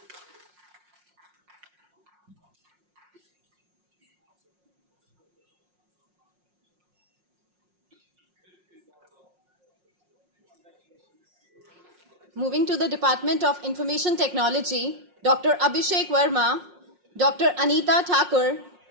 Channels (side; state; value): left; late; 5.6 ms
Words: Moving to the Department of Information Technology, Dr. Abhishek Verma, Dr. Anita Thakur,